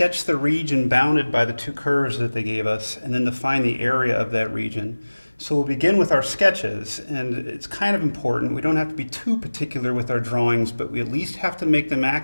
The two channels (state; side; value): inverted; both; correlation -1.00